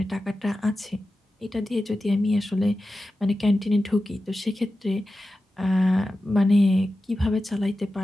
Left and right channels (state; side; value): normal; both; correlation 0.93